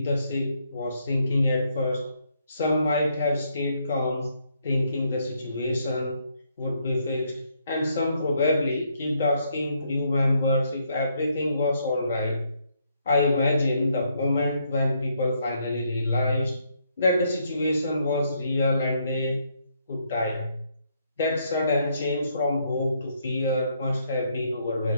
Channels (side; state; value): both; inverted; correlation -0.74